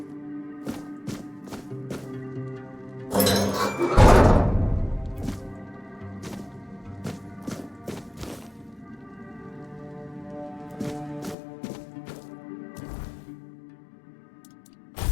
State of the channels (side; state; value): right; drops out; at 11.4 s